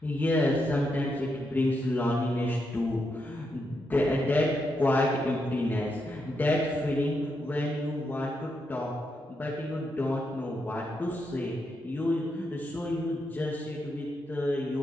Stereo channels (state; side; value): normal; both; correlation 0.82